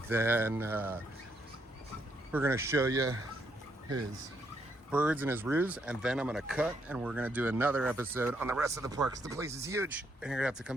then we're gonna show you his birds and his roos. And then I'm gonna cut and we're gonna do another episode on the rest of the park. 'Cause the place is huge and you're gonna have to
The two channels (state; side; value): normal; both; correlation 0.75